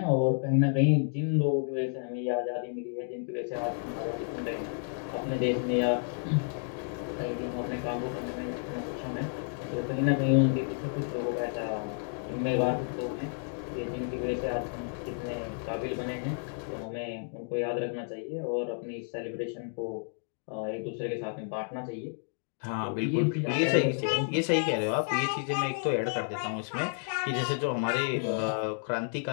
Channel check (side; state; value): right; silent; 57 dB below the other